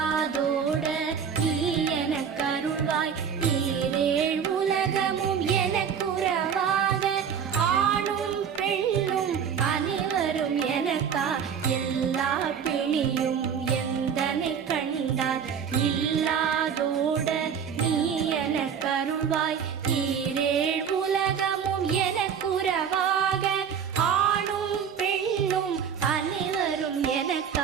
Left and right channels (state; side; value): quieter; left; 7.4 dB